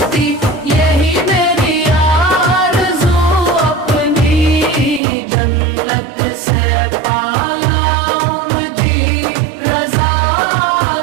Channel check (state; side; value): drops out; left; at 5.0 s